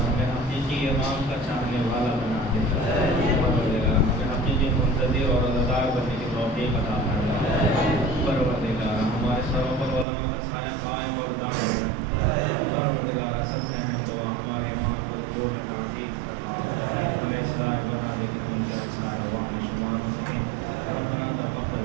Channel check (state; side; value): drops out; left; at 10.1 s